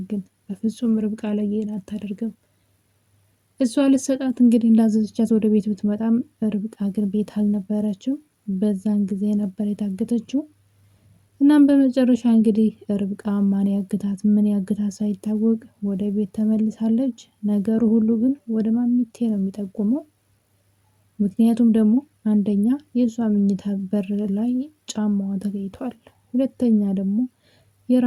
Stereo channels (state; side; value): identical; both; correlation 1.00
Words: ግን በፍጹም ርብቃ ላይ ይሄን አታደርግም። እሷ ልትሰጣት እንግዲህ እንዳዘዘቻት ወደ ቤት ብትመጣም ርብቃ ግን ቤት አልነበረችም። በዛን ጊዜ ነበር የታገተችው። እናም በመጨረሻ እንግዲህ ርብቃ ማን ያግታት ምን ያግታት ሳይታወቅ ወደ ቤት ተመልሳለች። ነገሩ ሁሉ ግን ወደ ማሚቴ ነው የሚጠቁመው። ምክንያቱም ደግሞ አንደኛ የእሷ መኝታ በር ላይ ጫማዋ ተገኝቷል። ሁለተኛ ደግሞ